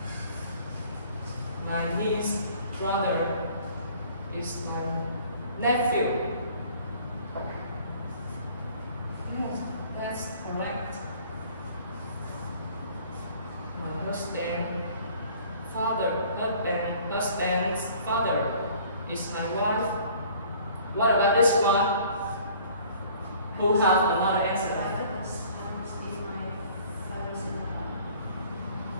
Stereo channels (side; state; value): both; inverted; correlation -0.53